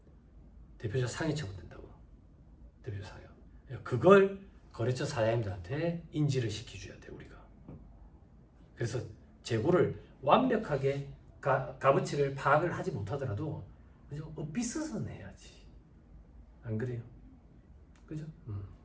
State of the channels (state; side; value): identical; both; correlation 1.00